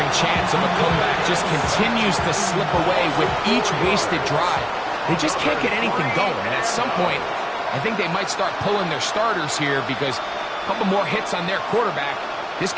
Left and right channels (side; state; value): both; identical; correlation 1.00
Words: chance of a comeback just continues to slip away with each wasted drive. They just can't get anything going. And at some point, I think they might start pulling their starters here because a couple more hits on their quarterback, this